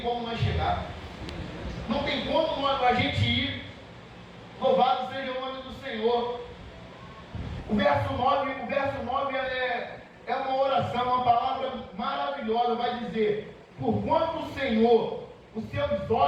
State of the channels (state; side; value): identical; both; correlation 1.00